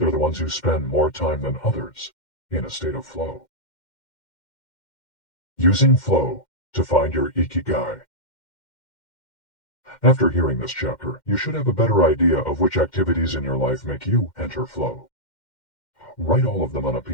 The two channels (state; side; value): late; right; 2.1 ms